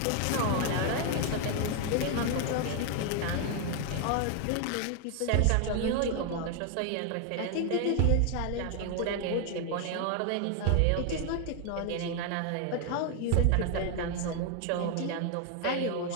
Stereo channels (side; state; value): both; different; correlation 0.00